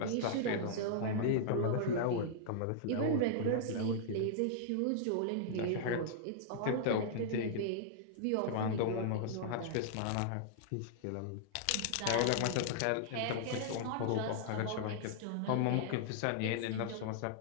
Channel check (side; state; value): both; different; correlation -0.01